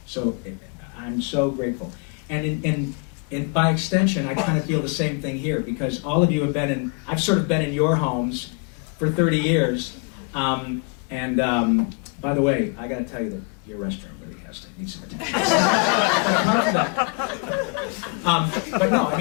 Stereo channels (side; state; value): right; quieter; 33.6 dB